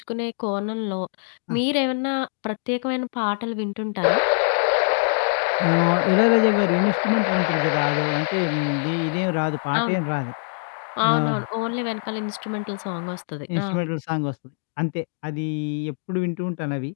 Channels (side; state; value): right; silent; digital silence